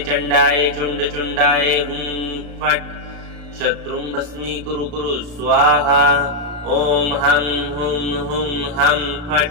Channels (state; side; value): late; left; 34 ms